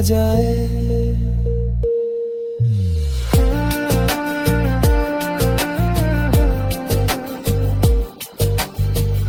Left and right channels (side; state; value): both; identical; correlation 1.00